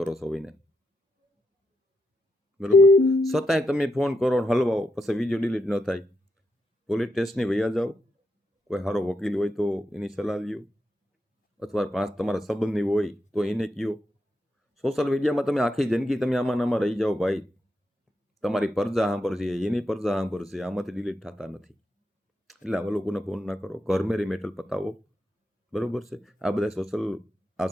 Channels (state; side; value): normal; both; correlation 0.83